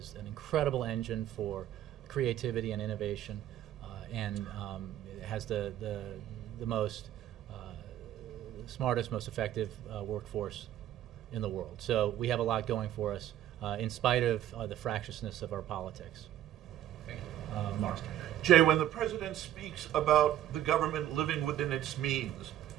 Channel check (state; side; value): quieter; left; 12.2 dB